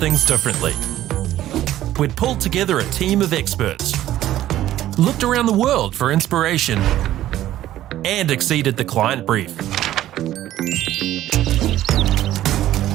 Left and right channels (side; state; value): left; quieter; 13.5 dB